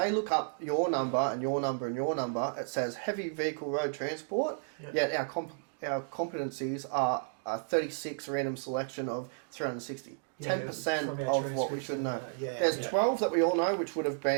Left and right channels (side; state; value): left; silent; digital silence